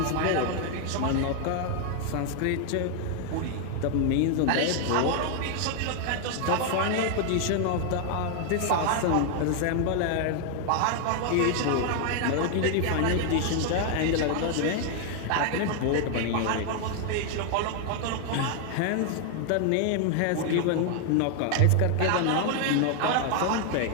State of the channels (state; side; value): different; both; correlation 0.00